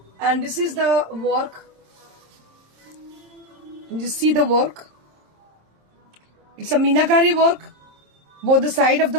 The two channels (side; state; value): left; late; 27 ms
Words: And this is the work. You see the work. It's a meenakari work, both the side of